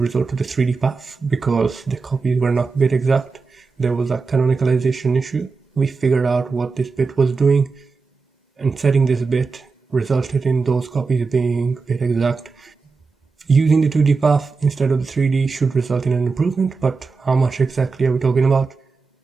to the 3D path because the copies were not bit exact. There was a canonicalization issue. We figured out what this bit was doing, and setting this bit resulted in those copies being bit exact. Using the 2D path instead of the 3D should result in an improvement, but how much exactly are we talking about?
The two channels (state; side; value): quieter; left; 4.5 dB